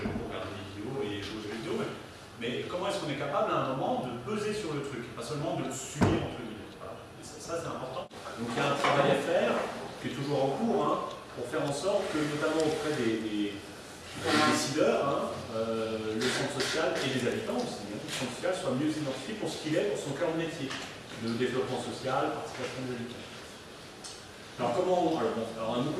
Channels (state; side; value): identical; both; correlation 1.00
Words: beaucoup regarder des vidéos et jouer aux jeux vidéo, mais comment est-ce qu'on est capable à un moment de peser sur le truc, et pas seulement de le subir entre guillemets. Voilà. Et ça c'est important. Donc il y a un travail à faire, qui est toujours en cours, hein, pour faire en sorte que, notamment auprès des décideurs, hein, le centre social et les habitants aussi, le centre social soit mieux identifié pour ce qu'il est, pour son cœur de métier, le développement social, participation des habitants. Alors on a